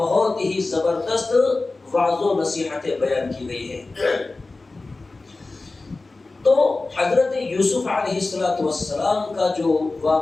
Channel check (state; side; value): quieter; right; 3.4 dB